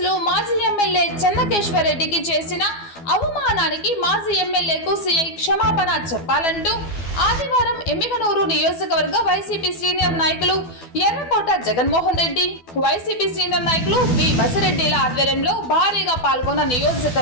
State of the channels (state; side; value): late; right; 12 ms